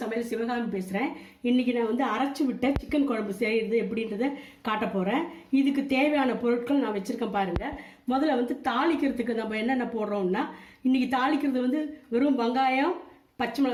சமையல் சிவகாமி பேசுகிறேன். இன்றைக்கி நான் வந்து அரைச்சி விட்ட சிக்கன் குழம்பு செய்கிறது எப்படின்றத காட்ட போகிறேன். இதுக்கு தேவையான பொருட்கள் நான் வச்சுருக்கேன் பாருங்கள். முதல்ல வந்து தாளிக்கிறதுக்கு நம்ம என்னென்ன போடுறோம்னா, இன்றைக்கி தாளிக்கிறது வந்து வெறும் வெங்காயம், பச்சை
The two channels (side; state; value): both; identical; correlation 1.00